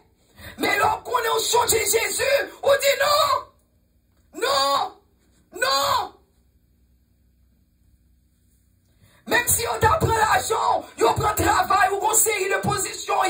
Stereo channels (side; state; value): both; identical; correlation 1.00